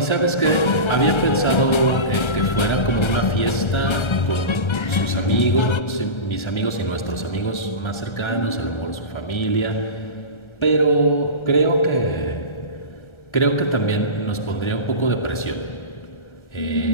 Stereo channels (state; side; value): late; right; 1.3 ms